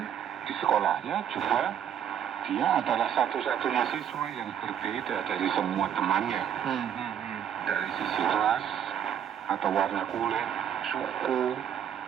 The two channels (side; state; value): left; quieter; 9.3 dB